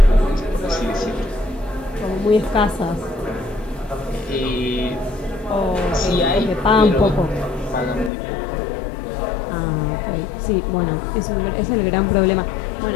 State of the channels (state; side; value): drops out; right; at 8.1 s